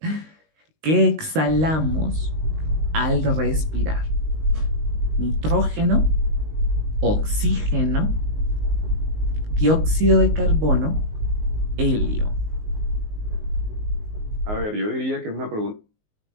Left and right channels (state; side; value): late; left; 19 ms